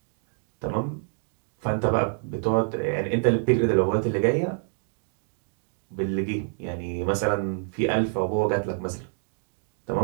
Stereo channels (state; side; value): silent; left; digital silence